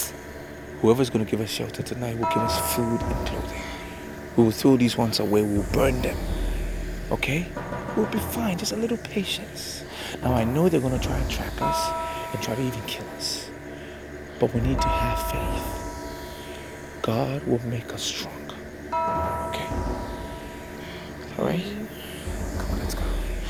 Whoever's going to give us shelter tonight will give us food and clothing. We will throw these ones away. We'll burn them. Okay? We'll be fine. Just a little patience. Now, I know they're going to try and track us and try to even kill us. But we need to have faith. God will make us strong. Okay? Alright? Come on, let's go.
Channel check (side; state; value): both; identical; correlation 1.00